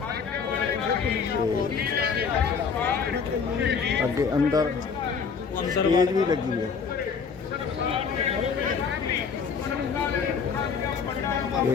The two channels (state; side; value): quieter; right; 5.9 dB